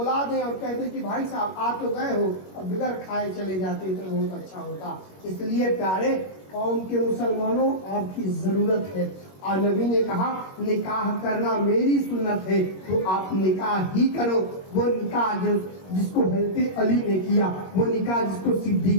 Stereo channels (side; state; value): right; late; 21 ms